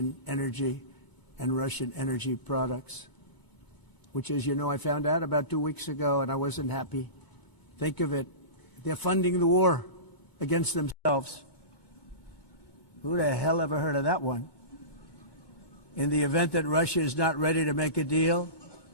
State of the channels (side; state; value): left; late; 2.2 ms